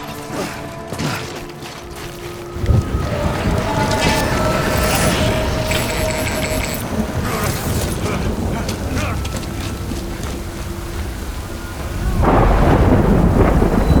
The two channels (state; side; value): identical; both; correlation 1.00